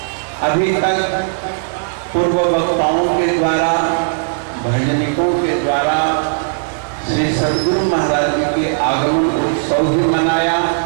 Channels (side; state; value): left; silent; digital silence